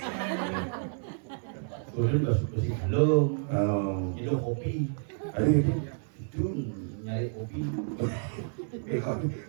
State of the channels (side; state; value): left; silent; 58 dB below the other